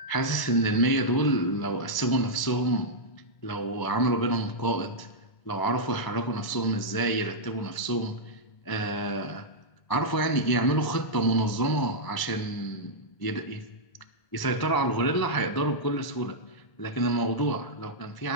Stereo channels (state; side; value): late; right; 1.0 ms